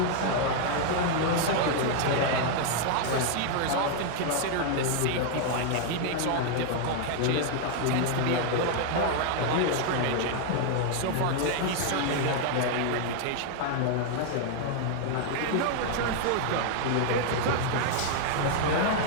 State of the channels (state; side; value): different; both; correlation 0.00